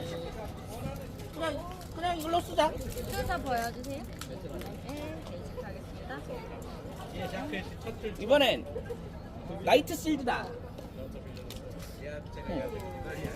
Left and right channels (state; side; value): identical; both; correlation 1.00